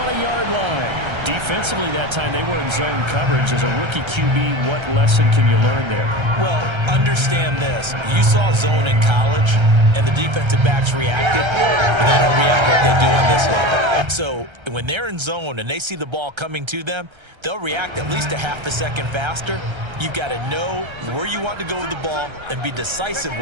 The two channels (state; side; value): late; left; 1.3 ms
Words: line. Defensively that time, they were in zone coverage. As a rookie QB, what lesson can you learn there? Well, understand this. You saw zone in college, and the defensive backs reacted, but they don't react like they do on this level. So when they're in zone and they see the ball coming to them, they'll react at least a half a second faster. You've got to know where you want to go with the ball and be decisive